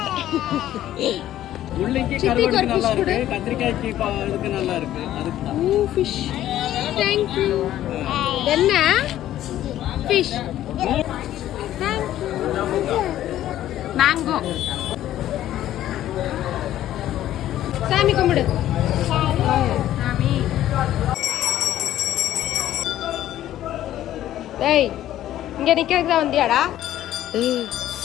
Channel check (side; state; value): right; quieter; 12.9 dB